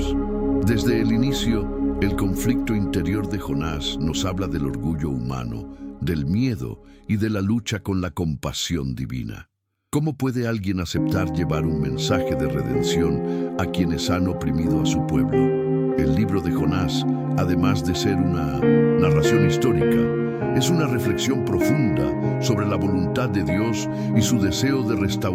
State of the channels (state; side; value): identical; both; correlation 1.00